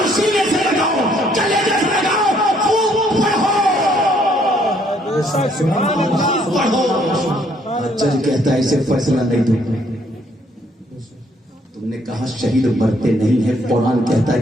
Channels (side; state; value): both; normal; correlation 0.66